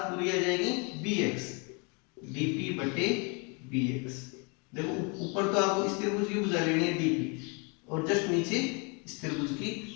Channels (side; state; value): right; quieter; 32.7 dB